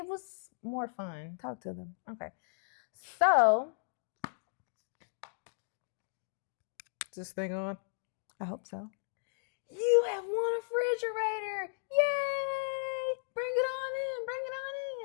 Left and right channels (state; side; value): silent; right; digital silence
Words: was more fun. Talk to them. Okay. So, is this thing on? I hope so. You have won a refrigerator. Yay! Bring it on